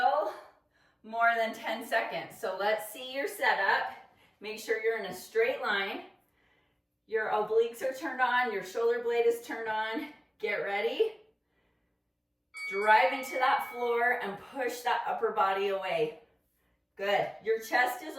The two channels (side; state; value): both; identical; correlation 1.00